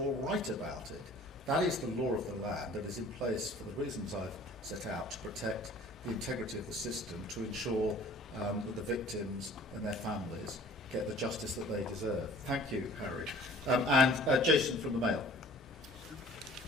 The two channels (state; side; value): normal; both; correlation 0.49